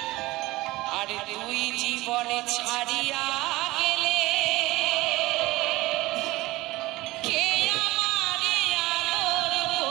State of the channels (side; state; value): left; quieter; 19.6 dB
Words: আর তুই জীবনে ছাড়িয়া গেলে কে আমারে আদর